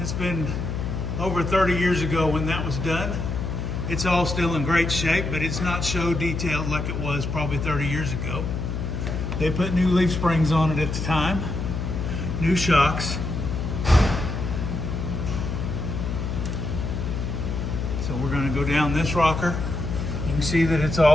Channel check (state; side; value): noise; left; hum, 3 dB below the sound